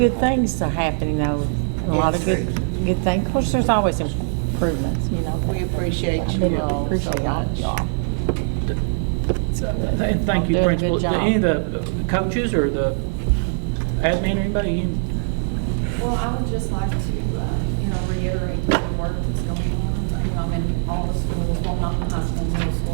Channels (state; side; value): silent; left; digital silence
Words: things are happening though. A lot of good things. Of course, there's always improvements, We appreciate you all so much. And thank you, Doing a Principal. good job. Any of the coaches or the admin or anybody? Well, I would just like to, reiterate the work that's going on. I'm in all the schools, well, not the high school, middle